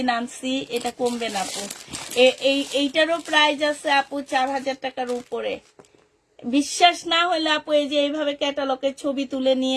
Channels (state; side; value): identical; both; correlation 1.00